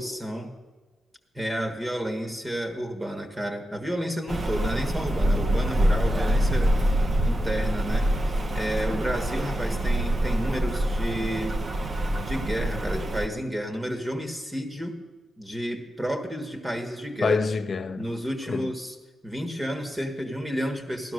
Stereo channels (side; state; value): both; normal; correlation 0.90